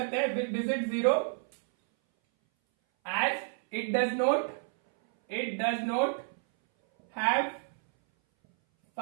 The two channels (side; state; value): left; silent; 58 dB below the other